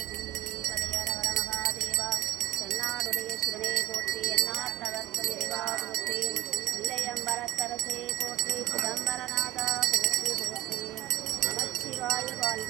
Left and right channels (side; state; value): left; quieter; 15.2 dB